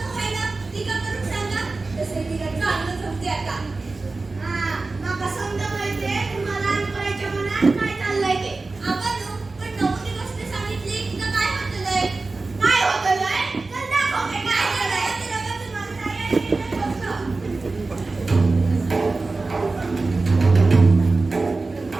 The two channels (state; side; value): quieter; left; 3.6 dB